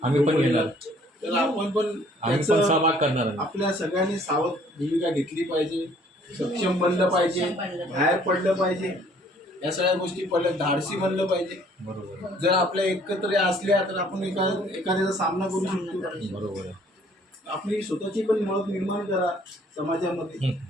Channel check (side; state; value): both; normal; correlation 0.59